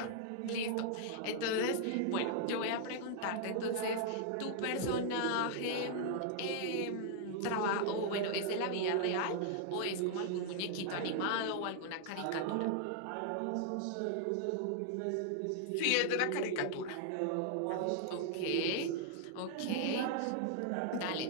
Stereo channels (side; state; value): both; different; correlation 0.00